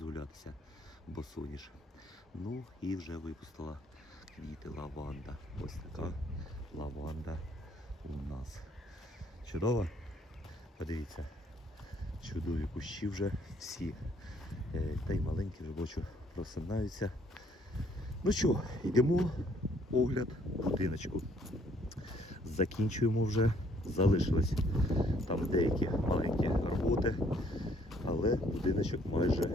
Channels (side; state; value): both; normal; correlation 0.64